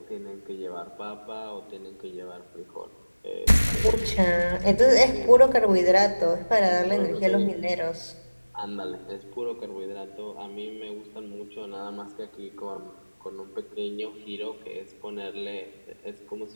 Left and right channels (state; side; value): inverted; both; correlation -1.00